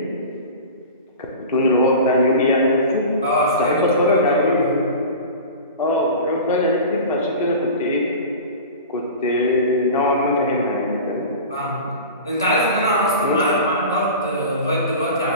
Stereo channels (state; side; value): inverted; both; correlation -0.33